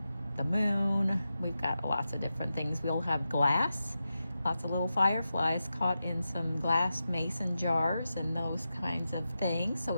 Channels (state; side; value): inverted; both; correlation -0.90